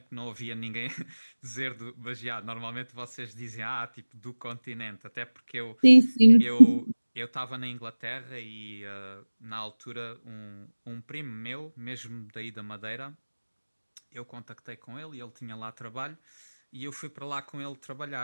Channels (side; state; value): both; inverted; correlation -1.00